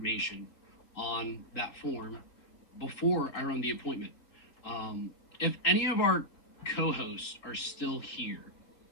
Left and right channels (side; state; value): right; late; 3.9 ms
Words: on that form before I run the appointment. If any of our co-hosts are still here,